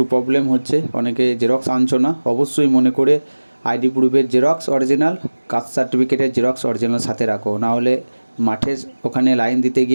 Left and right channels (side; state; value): both; inverted; correlation -1.00